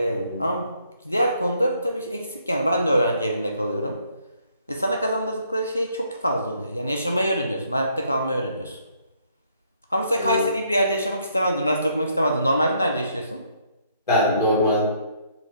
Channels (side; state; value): both; inverted; correlation -0.69